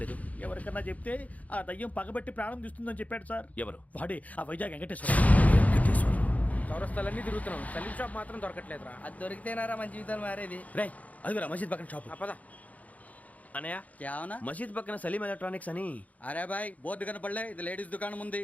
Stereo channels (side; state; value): right; late; 0.072 ms